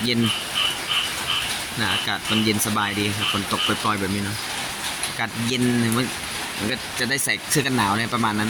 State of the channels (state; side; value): identical; both; correlation 1.00